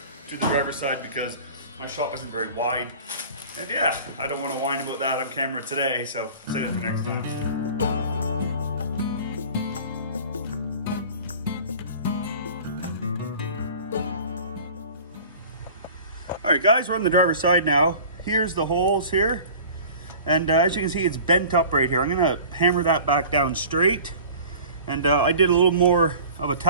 to the driver's side because my shop isn't very wide. And yeah, I don't want to whine about that on camera today, so save it for next time. All right, guys, we're on the driver's side now. Here's the holes here. And as you can see, it's bent up right here. I'm gonna hammer that back down straight. And I did a little more of a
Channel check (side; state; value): both; inverted; correlation -0.42